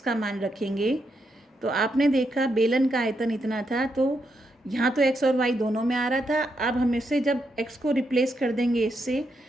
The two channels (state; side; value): normal; both; correlation 0.81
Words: का मान रखेंगे, तो आपने देखा बेलन का आयतन इतना था, तो यहाँ तो x और y दोनों में आ रहा था। अब हम इससे जब x को रिप्लेस कर देंगे इससे,